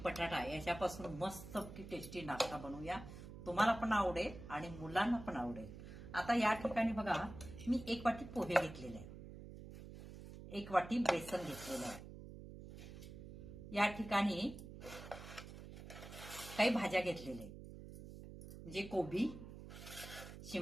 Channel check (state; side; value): noise; right; hum, 13 dB below the sound